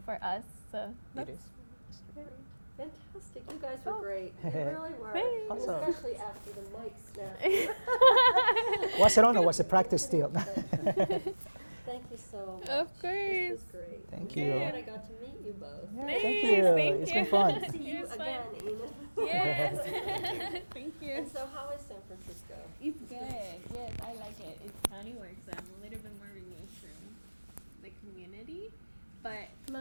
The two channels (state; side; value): inverted; both; correlation -1.00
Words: for us. So it is. Fantastic. You guys were great. You really were. Thanks. Awesome. Especially after the mic snap. Was it on or was it practice still? Thank you so much. Of course. This was great. Thank I'm you. glad I got to meet you both. Yeah, Nice, thank you. thank It's you. been fun. See you It was again, fun. Enith. Yes. Thank you. And so how is San Francisco? It's good. Yes, I like it. It's county work, so I'm a little bit more removed from the community, but